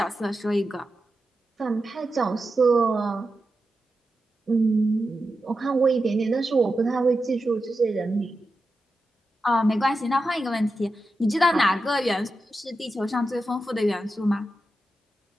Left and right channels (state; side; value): normal; both; correlation 0.90